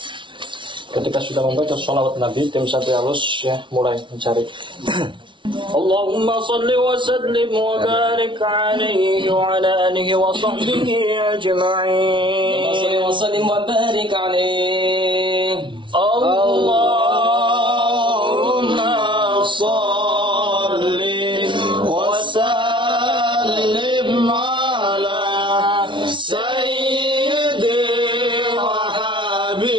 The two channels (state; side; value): late; left; 0.24 ms